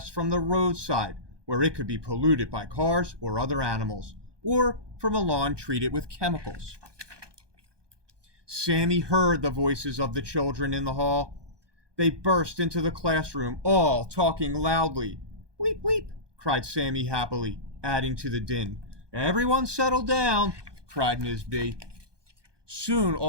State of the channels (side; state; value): left; late; 1.2 ms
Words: from the roadside, where it could be polluted by cars or other animals, or from a lawn treated with chemicals. Sammy heard the voices of the children in the hall. They burst into the classroom, all talking loudly. Weep, weep, cried Sammy happily, adding to the din. Everyone settle down, cried Ms. B. Soon